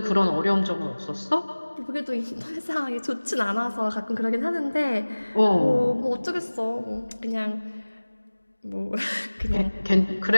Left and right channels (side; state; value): both; inverted; correlation -1.00